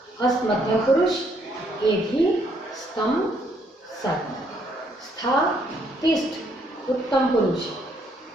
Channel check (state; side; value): normal; both; correlation 0.70